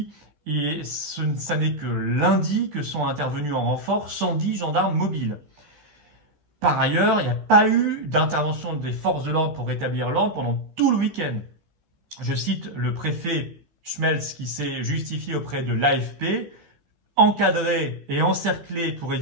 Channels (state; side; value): late; left; 14 ms